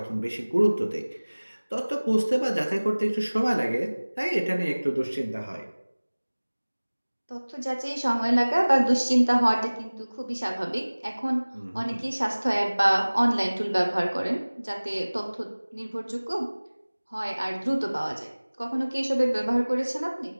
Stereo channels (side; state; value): both; inverted; correlation -1.00